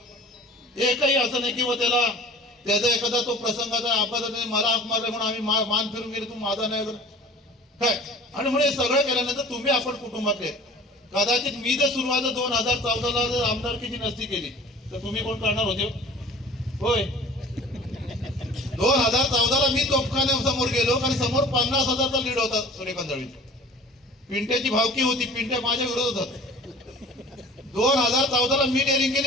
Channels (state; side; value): normal; both; correlation 0.43